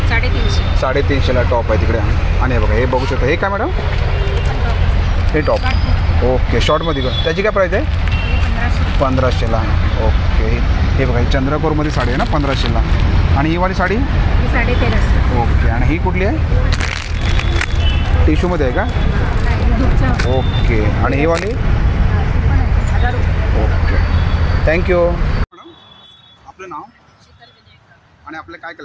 350ला टॉप आहे तिकडे. आणि हे बघा हे बघू शकता. हे काय मॅडम? हे टॉप. ओके. शॉर्टमध्ये का? त्याची काय प्राईस आहे? 1500ला. ओके. हे बघा ही चंद्रपूरमध्ये साडी आहे ना 1500ला. आणि ही वाली साडी? 1350. ओके. आणि ही कुठली आहे? टिश्यूमध्ये आहे का? ओके. आणि ही वाली? ओके. थँक्यू. मॅडम आपलं नाव आणि आपलं काय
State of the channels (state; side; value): identical; both; correlation 1.00